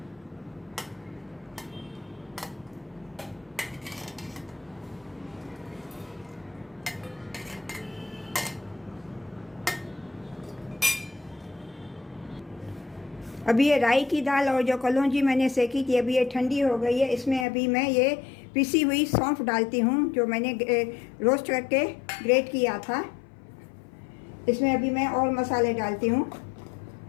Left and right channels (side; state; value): right; drops out; at 17.4 s